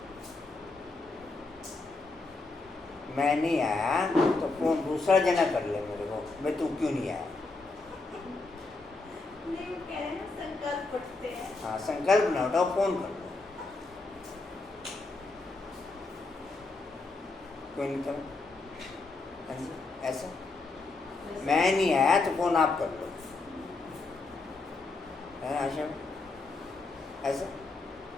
मैं नहीं आया तो फोन दूसरा जना कर ले मेरे को, मैं तू क्यों नहीं आया। नहीं वो कह रहे हैं ना संकल्प पढ़ते हैं। हाँ, संकल्प ना उठाओ, फोन कर लो। कोई नहीं कर। हाँ जी, ऐसा मैं नहीं आया तो फोन आप कर लो, है आशा? ऐसा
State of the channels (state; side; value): quieter; right; 3.6 dB